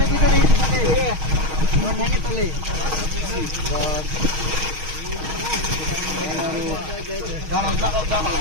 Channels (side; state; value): left; late; 6.4 ms